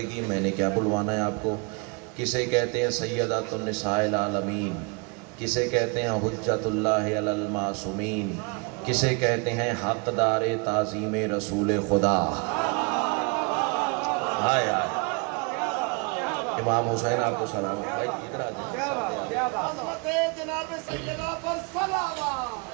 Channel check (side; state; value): left; quieter; 32.1 dB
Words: گی۔ میں نے کیا بلوانا ہے آپ کو؟ کسے کہتے ہیں سیدۃ النساء العالمین، کسے کہتے ہیں حجت اللہ علی المعصومین، کسے کہتے ہیں حقدار تعظیم رسول خدا۔ امام حسین آپ کو سلام، بھائی ادھر آ جائیں۔ عظمت جناب سیدہ پر